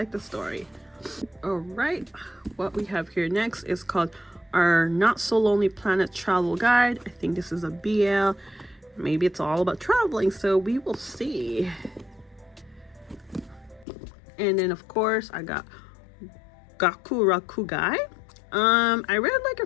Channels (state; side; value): drops out; right; at 13.9 s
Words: the story. All right, what we have here next is called Our Not So Lonely Planet Travel Guide. I think this is a BL. Maybe it's all about traveling, so we will see. And then of course I got Gakurakugai. I read like